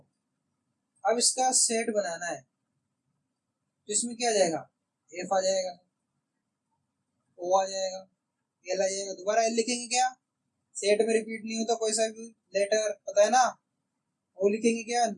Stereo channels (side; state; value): both; identical; correlation 1.00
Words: अब इसका सेट बनाना है तो इसमें क्या आ जाएगा? एफ आ जाएगा, ओ आ जाएगा, एल आ जाएगा। दोबारा एल लिखेंगे क्या? सेट में रिपीट नहीं होता कोई सा भी लेटर, पता है ना। ओ लिखेंगे क्या?